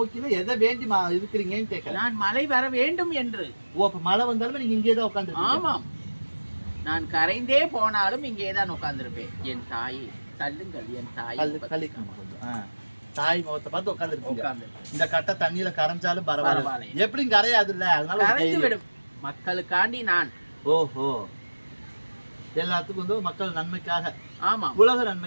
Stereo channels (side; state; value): both; inverted; correlation -1.00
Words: எதை வேண்டி இருக்கிறீங்கன்னு கேட்கல. நான் மழை வர வேண்டும் என்று. ஓ, அப்ப மழை வந்தாலும் நீங்க இங்கே தான் உட்காந்து? ஆமாம், நான் கரைந்தே போனாலும் இங்கே தான் உட்கார்ந்துருப்பேன். என் தாயை தள்ளுங்கள், என் தாய் தாய் முகத்தை பார்த்து உட்காந்து. இந்த கட்டை தண்ணியில கரைஞ்சாலும் பரவாயில்ல, எப்படியும் கரையாது இல்ல, அதனால கரைந்து விடும். மக்களுக்காண்டி நான். ஓஹோ, எல்லாத்துக்கும் வந்து மக்கள் நன்மைக்காக. ஆமா, உலக